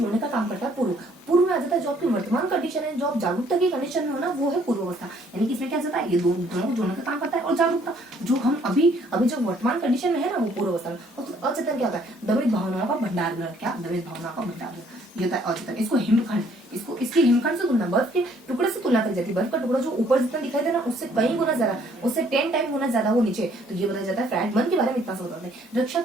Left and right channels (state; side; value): normal; both; correlation 0.63